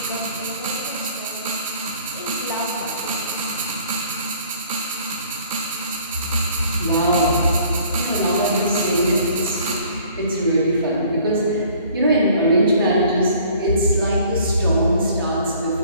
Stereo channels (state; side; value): inverted; both; correlation -0.55